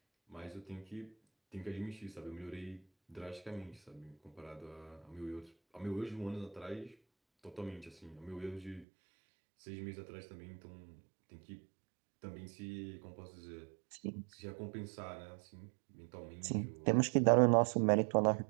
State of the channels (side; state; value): left; drops out; at 8.8 s